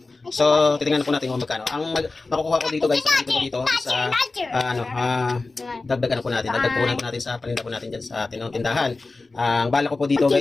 So, titingnan po natin kung magkano. Ang makukuha ko dito guys, dito sa dagdag po natin sa paninda po natin diyan sa tindahan. Ang bala ko po dito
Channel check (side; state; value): right; quieter; 3.5 dB